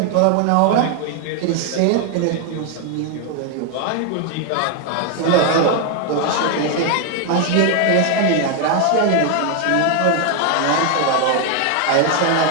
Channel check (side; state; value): both; different; correlation 0.01